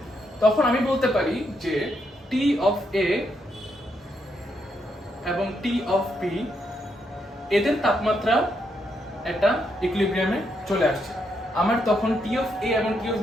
তখন আমি বলতে পারি যে টি অফ এ এবং টি অফ বি এদের তাপমাত্রা একটা ইকুইলিব্রিয়ামে চলে আসছে। আমার তখন টি অফ এ এবং টি অফ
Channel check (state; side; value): normal; both; correlation 0.78